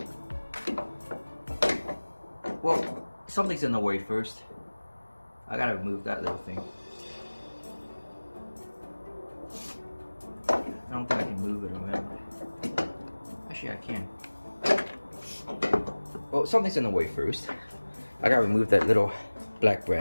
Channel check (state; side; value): inverted; both; correlation -1.00